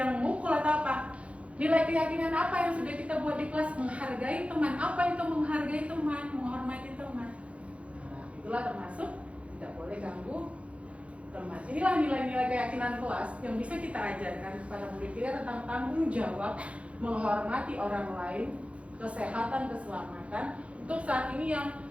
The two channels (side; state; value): left; late; 0.062 ms